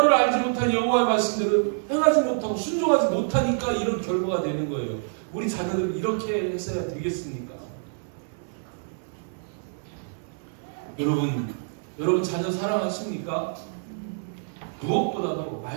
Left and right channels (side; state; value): left; silent; 56 dB below the other